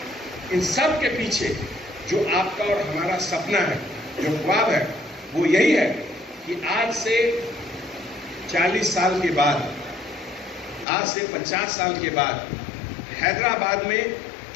ان سب کے پیچھے جو آپ کا اور ہمارا سپنا ہے، جو خواب ہے، وہ یہی ہے کہ آج سے 40 سال کے بعد، آج سے 50 سال کے بعد حیدرآباد میں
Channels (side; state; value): right; drops out; at 10.9 s